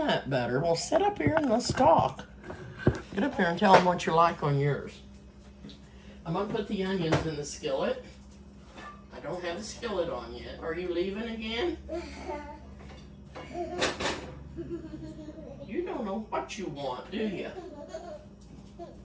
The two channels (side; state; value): both; identical; correlation 1.00